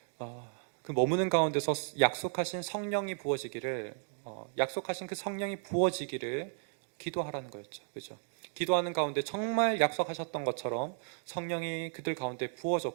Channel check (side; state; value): left; silent; 55 dB below the other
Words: 그 머무는 가운데서 약속하신 성령이 부어지기를 약속하신 그 성령이 부어지기를 기도하라는 거였죠. 그렇죠? 기도하는 가운데 정말 약속하셨던 것처럼 성령이 그들 가운데